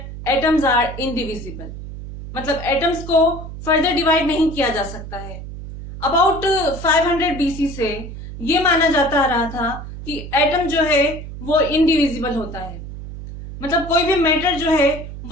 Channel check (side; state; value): right; noise; hum, 11 dB below the sound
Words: atoms are indivisible, मतलब एटम्स को फर्दर डिवाइड नहीं किया जा सकता है। अबाउट 500 BC से ये माना जाता रहा था कि एटम जो है वो इनडिविजिबल होता है, मतलब कोई भी मैटर जो है